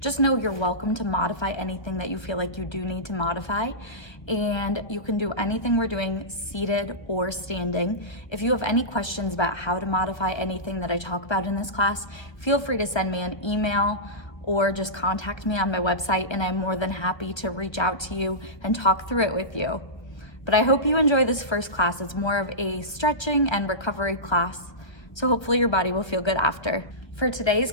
know you're welcome to modify anything that you feel like you do need to modify, and you can do anything we're doing seated or standing. If you have any questions about how to modify anything that I talk about in this class, feel free to send me an email or just contact me on my website, and I'm more than happy to reach out to you and talk through it with you. But I hope you enjoy this first class. It's more of a stretching and recovery class, so hopefully your body will feel good after. For today's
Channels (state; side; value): late; right; 1.3 ms